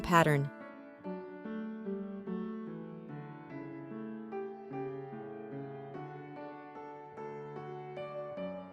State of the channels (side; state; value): both; identical; correlation 1.00